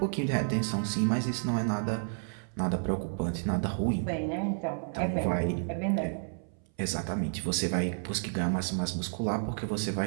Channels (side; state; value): left; silent; 57 dB below the other